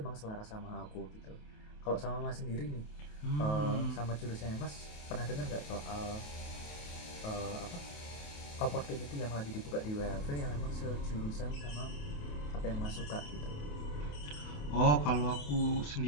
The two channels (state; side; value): late; right; 28 ms